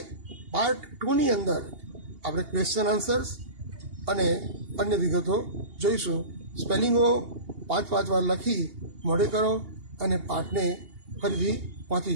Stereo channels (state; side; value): late; left; 2.8 ms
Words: પાર્ટ 2ની અંદર આપણે ક્વેશ્ચન આન્સર્સ અને અન્ય વિગતો જોઈશું. સ્પેલિંગો 5 વાર લખી મોઢે કરો અને પાઠને ફરીથી વાંચી